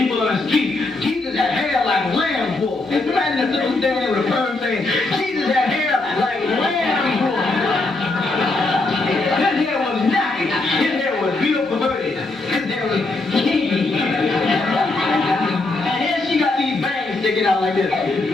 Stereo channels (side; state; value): right; quieter; 3.2 dB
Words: on the street. Jesus had hair like lamb wool. It's imagine a little standing with a firm saying, Jesus had hair like lamb wool. His hair was nappy. His hair was real perverted. His hair was kinky. And here she got these bangs sticking out like this.